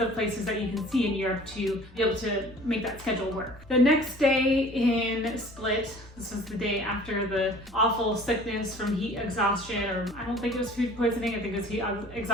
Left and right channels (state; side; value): normal; both; correlation 0.48